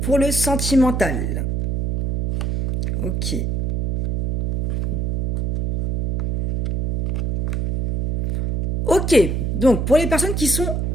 le sentimental. Ok. Ok, donc pour les personnes qui sont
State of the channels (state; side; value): noise; right; hum, 1 dB below the sound